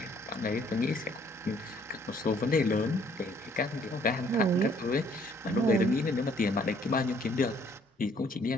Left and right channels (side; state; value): both; normal; correlation 0.63